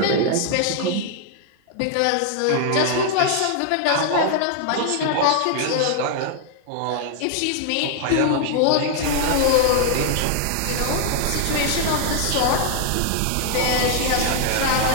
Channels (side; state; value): both; different; correlation 0.00